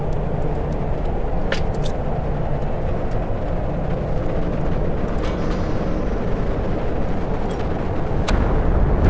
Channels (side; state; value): both; identical; correlation 1.00